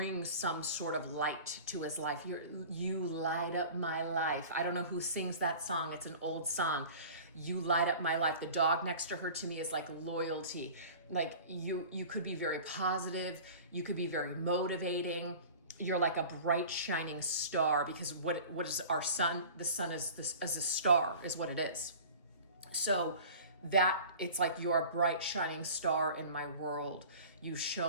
some sort of light to his life. You light up my life. I don't know who sings that song. It's an old song. You light up my life. The dog next to her to me is like loyalty. Like you could be very positive. You could be very motivating. You're like a bright shining star, because what is our sun? The sun is a star is what it is. So that it's like you're a bright shining star in my world. You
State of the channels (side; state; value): both; inverted; correlation -0.40